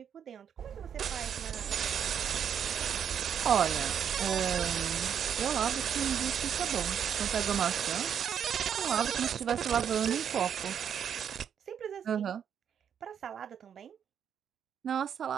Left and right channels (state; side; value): quieter; left; 8.3 dB